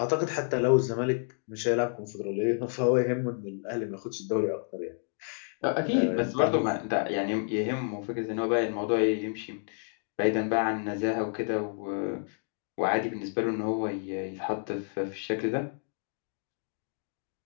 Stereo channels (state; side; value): silent; right; 58 dB below the other